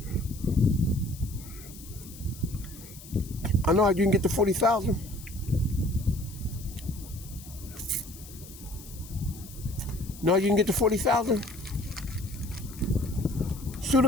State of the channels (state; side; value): noise; left; hiss, 17 dB below the sound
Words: I know how you can get the 40,000. Know how you can get the 40,000? Sue